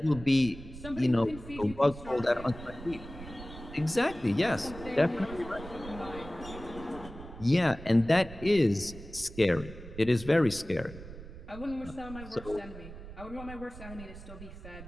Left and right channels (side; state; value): right; noise; rumble, 14 dB below the sound